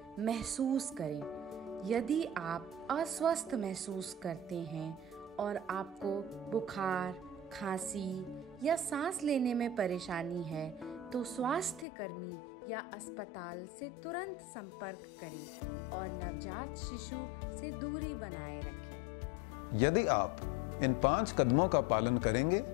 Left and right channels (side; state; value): right; drops out; at 11.9 s